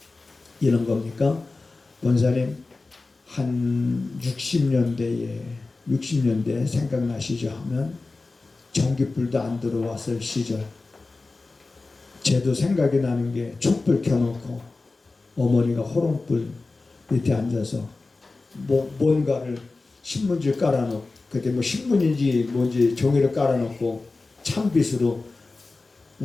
이런 겁니까? 권사님 한 60년대에 생각나시죠? 하면 전기불도 안 들어왔을 시절 제도 생각이 나는 게 촛불 켜놓고 어머니가 호롱불 밑에 앉아서 뭔가를 신문지를 깔아놓고 그때 신문인지 뭔지 종이를 깔아놓고 찬빛으로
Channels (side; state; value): right; quieter; 3.5 dB